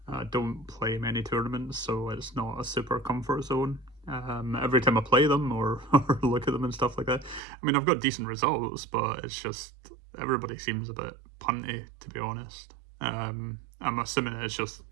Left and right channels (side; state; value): left; drops out; at 7.4 s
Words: I don't play many tournaments, so it's not a super comfort zone. Every time I play them or, or look at them and stuff like that, I mean, I've got decent results, but it's just everybody seems a bit punty, to be honest. I'm assuming it's just